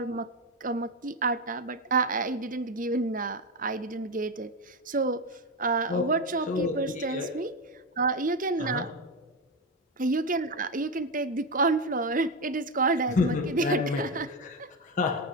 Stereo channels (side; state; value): both; normal; correlation 0.12